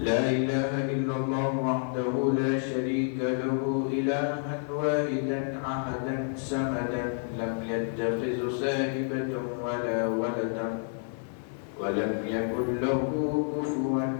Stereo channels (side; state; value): right; silent; 58 dB below the other